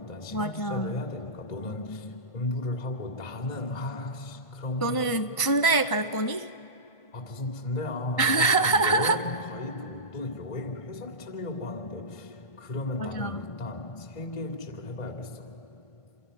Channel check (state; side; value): late; right; 1.5 ms